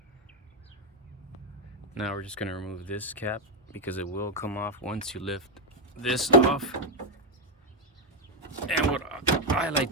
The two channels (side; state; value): both; normal; correlation 0.02